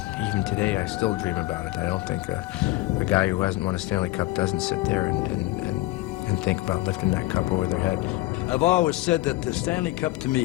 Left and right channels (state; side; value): quieter; right; 18.5 dB